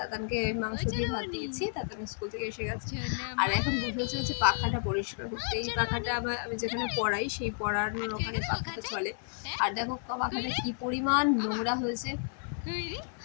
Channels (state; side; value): silent; right; 57 dB below the other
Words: তাতানকে মাংস দিয়ে ভাত দিয়েছি, তাতান স্কুল থেকে এসে গেছে। আর এখন বসেছে হচ্ছে পাখাটা পরিষ্কার করতে। এই পাখাটা আমি যেখানে পড়াই সেই পড়ানোর ওখানে পাখাটা চলে। আর দেখো পাখাটা কি পরিমাণ নোংরা হয়েছে।